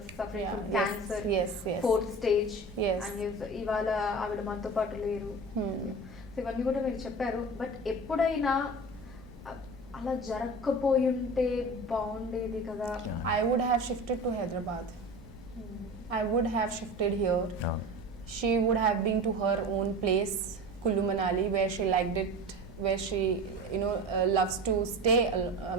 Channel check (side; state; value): both; normal; correlation 0.33